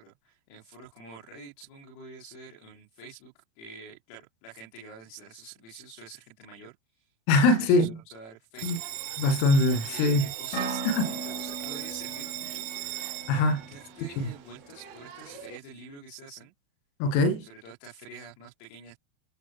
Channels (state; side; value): late; right; 36 ms